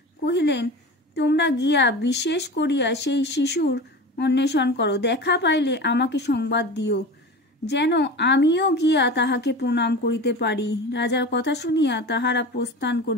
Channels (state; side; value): normal; both; correlation 0.32